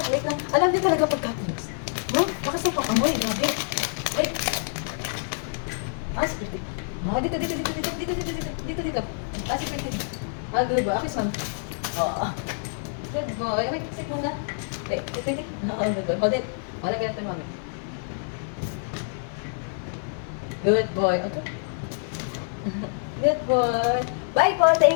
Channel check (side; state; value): right; silent; digital silence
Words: wait lang. Alam niyo talaga pagka-close. Bakas na pang amoy. Grabe. Wait. Security. Dito. Security. Good boy. Akis, ma'am. Good boy. Wait, sit muna. Wait. Good boy. Hold it. Wala ganito, mami. Good boy. Okay. Good boy. Bye po.